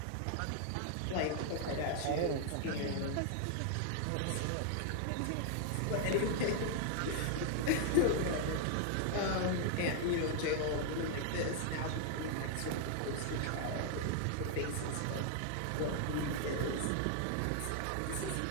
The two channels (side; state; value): both; different; correlation 0.00